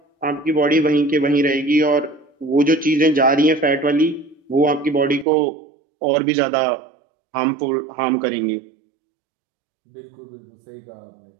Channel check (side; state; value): left; drops out; at 5.2 s